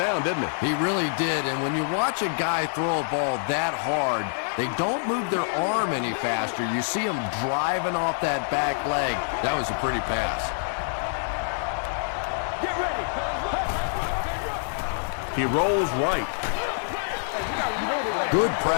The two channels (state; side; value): silent; right; digital silence